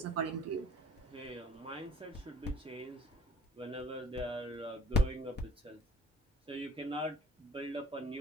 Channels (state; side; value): normal; both; correlation 0.51